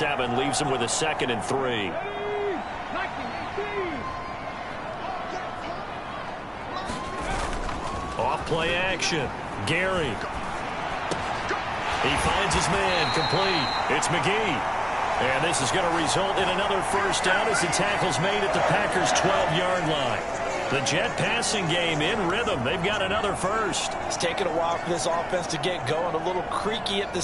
leaves him with a 2nd and 3. Off-play action. Gary. He finds his man complete. It's McGee. And this is going to result in another first down as the tackle's made at the Packers' 12-yard line. The Jet passing game in rhythm. They've got another first. It's taken a while for this offense to get going. A little creaky at the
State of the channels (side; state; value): both; identical; correlation 1.00